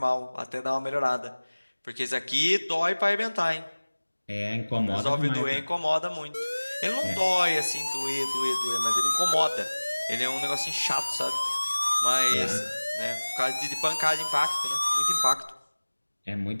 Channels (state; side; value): inverted; both; correlation -1.00